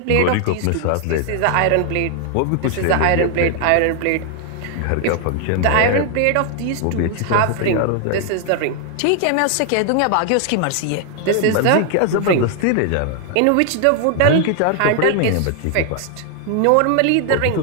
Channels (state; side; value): different; both; correlation 0.00